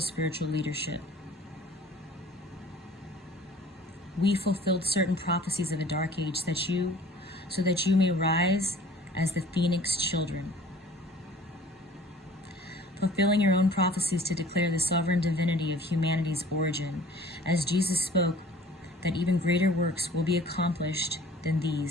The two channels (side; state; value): both; normal; correlation 0.49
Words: leadership. We fulfilled certain prophecies of a dark age so that you may rise as the Phoenix children. fulfilling your own prophecies to declare the sovereign divinity of humanity's origin, as Jesus spoke that even greater works will be accomplished than